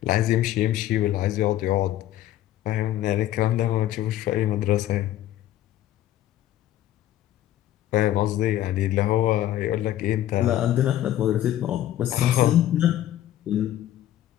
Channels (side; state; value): right; quieter; 12.9 dB